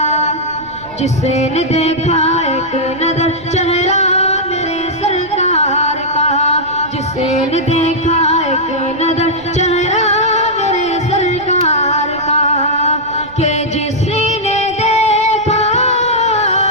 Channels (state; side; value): noise; right; rumble, 22 dB below the sound